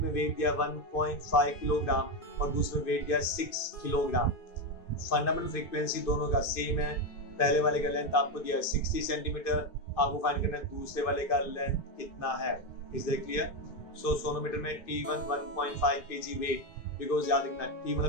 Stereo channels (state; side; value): late; right; 2.5 ms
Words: wait दिया 1.5 kilogram और दूसरे में वेट दिया 6 किलोग्राम। फंडामेंटल फ्रीक्वेंसी दोनों का सेम है। पहले वाले का लेंथ आपको दिया है 60 सेंटीमीटर, आपको फाइंड करना है दूसरे वाले का लेंथ कितना है। Is that clear? So sonometer में T1 1.5 kg वेट, बिकॉज याद रखना T